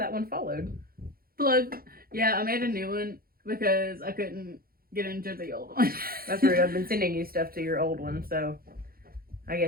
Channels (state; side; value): late; left; 0.43 ms